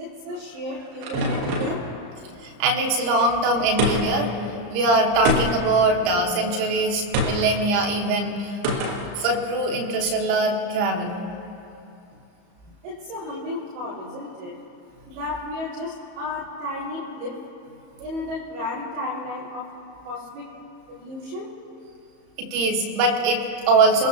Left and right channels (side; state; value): left; late; 34 ms